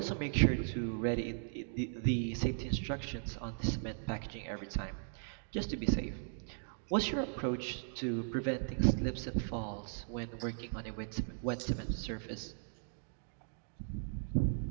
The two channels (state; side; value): silent; left; digital silence